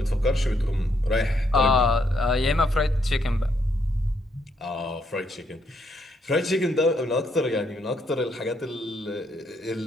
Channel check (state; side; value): normal; both; correlation 0.75